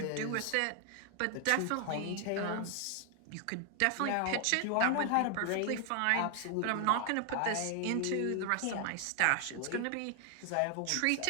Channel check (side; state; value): both; different; correlation 0.00